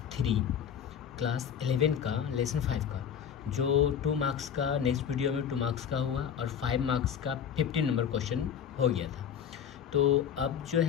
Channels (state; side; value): quieter; right; 8.3 dB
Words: 3 class 11 का लेसन 5 का जो 2 मार्क्स का नेक्स्ट वीडियो में 2 मार्क्स का हुआ और 5 मार्क्स का 15 नंबर क्वेश्चन हो गया था। तो अब जो